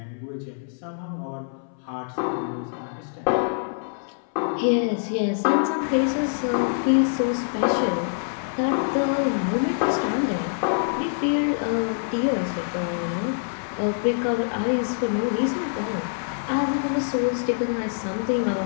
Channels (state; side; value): silent; right; 60 dB below the other